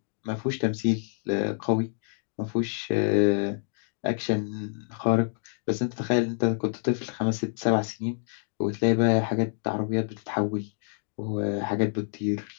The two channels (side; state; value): right; silent; digital silence